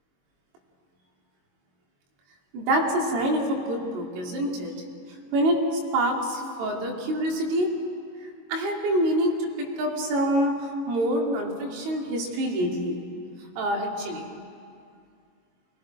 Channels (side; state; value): left; late; 22 ms